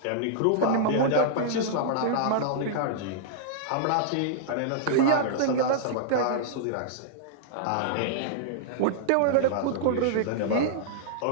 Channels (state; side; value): different; both; correlation -0.02